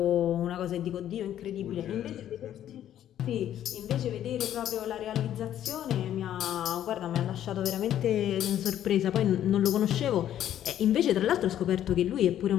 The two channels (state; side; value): quieter; right; 11.2 dB